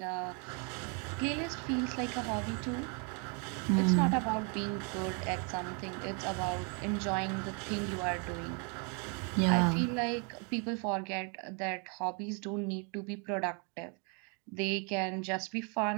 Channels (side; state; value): left; quieter; 36.0 dB